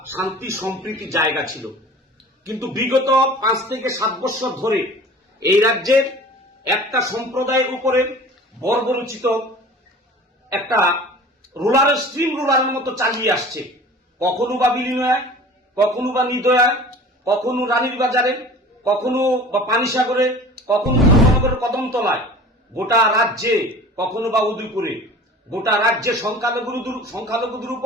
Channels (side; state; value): both; normal; correlation 0.42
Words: শান্তি সম্প্রীতি জায়গা ছিল, কিন্তু বিগত 5 থেকে 7 বছর ধরে এই রাজ্যের একটা সম্প্রদায়ের উপরে বর্বরোচিত একটা রুলারের স্ট্রিম রুলারের মতো চালিয়ে আসছে। কখনো বা বিলিনয়, কখনো বা নিদয়া, কখনো রানীর বাজারে, কখনো বা পানিসাগরে, কখনো ধর্মনগরের কদমতলায়, গোটা রাজ্যে, কখনো বা উদয়পুরে, গোটা রাজ্যে সংখ্যালঘুদের